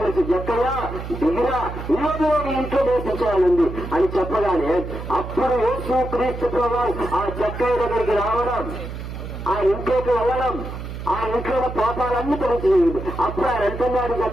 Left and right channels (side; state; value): right; noise; hum, 8 dB below the sound